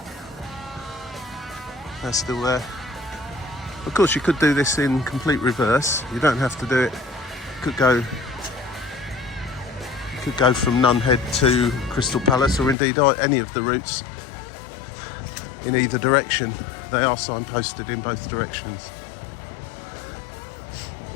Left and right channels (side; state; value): right; drops out; at 12.8 s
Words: They're still there. Of course, you could do this in complete reverse. You don't have to do it. You could go from Nunhead to Crystal Palace, or indeed any of the routes in either direction. They are signposted in both directions,